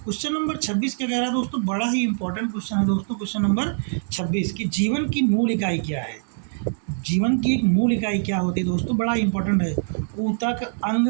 क्वेश्चन नंबर 26 क्या कह रहा है दोस्तों? बड़ा ही इंपॉर्टेंट क्वेश्चन है दोस्तों। क्वेश्चन नंबर 26 कि जीवन की मूल इकाई क्या है? जीवन की एक मूल इकाई क्या होती है दोस्तों? बड़ा इंपॉर्टेंट है। ऊतक, अंग,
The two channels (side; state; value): left; silent; digital silence